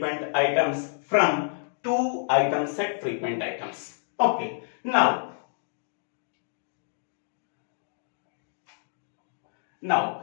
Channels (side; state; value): right; silent; digital silence